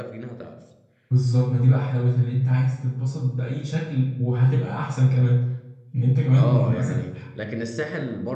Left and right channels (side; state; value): both; identical; correlation 1.00